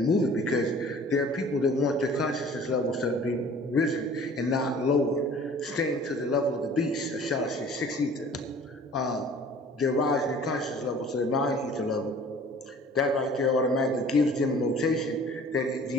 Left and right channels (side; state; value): both; normal; correlation 0.49